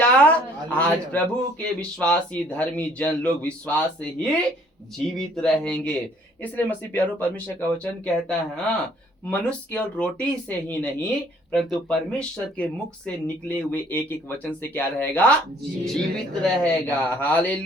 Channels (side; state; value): both; normal; correlation 0.60